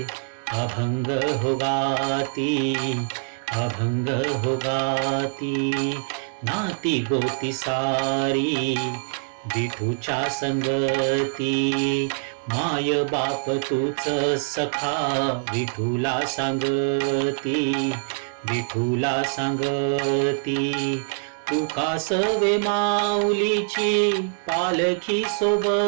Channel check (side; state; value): left; silent; 62 dB below the other